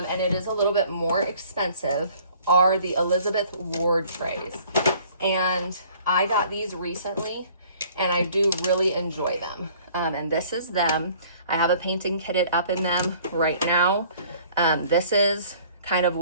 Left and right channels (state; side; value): inverted; both; correlation -0.54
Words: it is a little bit more expensive, are the Elizabeth Ward trays. And I got these recently and I do really enjoy them. And this is them. I have a painting kitted up in them right now. This is kind of